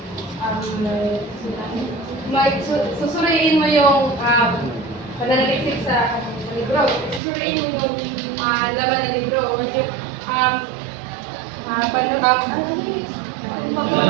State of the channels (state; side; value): drops out; left; at 7.2 s